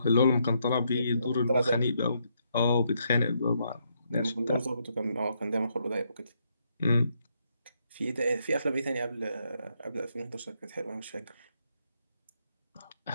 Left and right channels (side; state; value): both; inverted; correlation -0.76